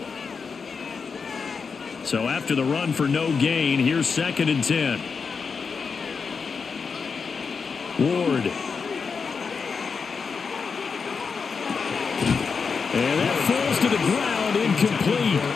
So after the run for no gain, here's 2nd and 10. Ward. And that falls to the ground, incomplete.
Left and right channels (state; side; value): quieter; right; 5.4 dB